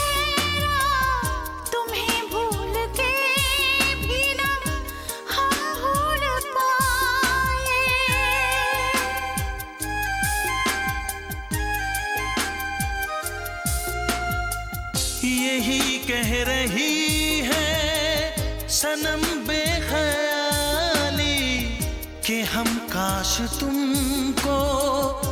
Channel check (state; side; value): identical; both; correlation 1.00